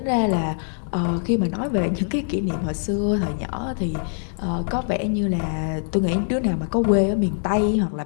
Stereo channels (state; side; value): silent; right; digital silence